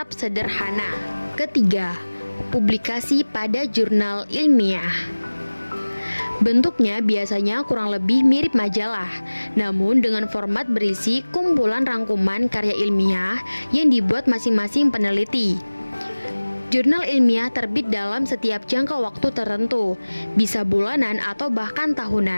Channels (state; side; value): inverted; both; correlation -1.00